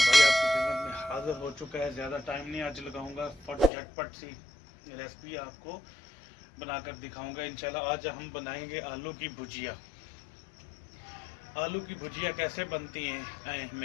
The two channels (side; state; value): right; drops out; at 3.7 s